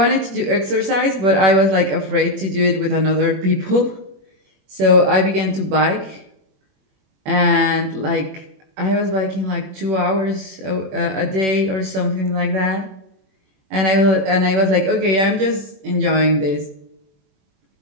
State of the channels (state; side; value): late; left; 21 ms